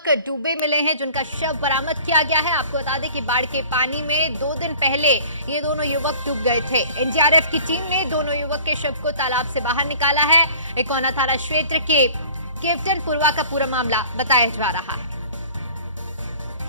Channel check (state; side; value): inverted; both; correlation -0.47